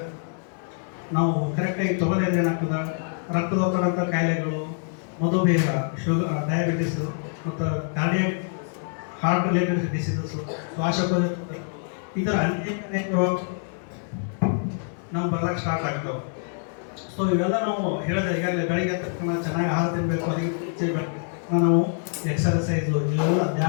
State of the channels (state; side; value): silent; right; 55 dB below the other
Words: ನಾವು ಕರೆಕ್ಟಾಗಿ ತೊಗೊಳಿದ್ರೆ ಏನಾಗ್ತದೆ, ರಕ್ತದೊತ್ತಡಂಥ ಕಾಯಿಲೆಗಳು, ಮಧುಮೇಹ, ಶುಗರ್, ಡಯಾಬಿಟಿಸು ಮತ್ತು ಕಾರ್ಡಿಯಾಕ್ ಹಾರ್ಟ್ ರಿಲೇಟೆಡ್ ಡಿಸೀಸಸ್ಸು, ಶ್ವಾಸಕೋಶ, ಈ ಥರ ಅನೇಕ ರೋಗ ನಾವು ಬರ್ಲಿಕ್ಕೆ ಸ್ಟಾರ್ಟ್ ಆಗ್ತಾವೆ. ಸೊ ಇವೆಲ್ಲ ನಾವು ಹೇಳಿದ್ರೆ ಈಗಾಗಲೇ ಬೆಳಗ್ಗೆ ತಕ್ಷಣ ಚೆನ್ನಾಗಿ ಆಹಾರ ತಿನ್ನಬೇಕು. ಅದಕ್ಕೆ ನಾವು ಎಕ್ಸರ್ಸೈಸು, ಇವೆಲ್ಲ